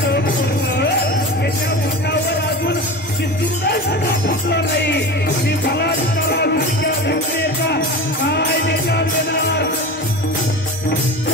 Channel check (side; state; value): both; normal; correlation 0.30